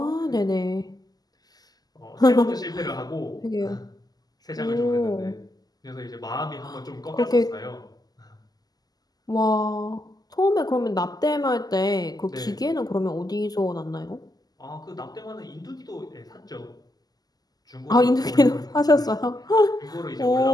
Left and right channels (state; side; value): late; right; 0.19 ms